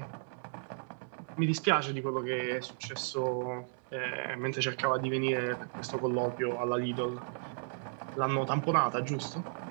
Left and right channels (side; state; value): left; silent; 55 dB below the other